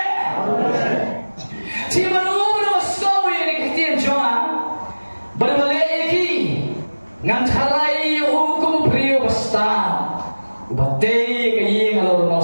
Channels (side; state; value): both; inverted; correlation -1.00